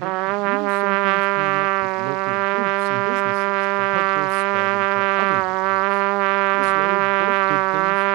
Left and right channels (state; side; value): quieter; left; 24.4 dB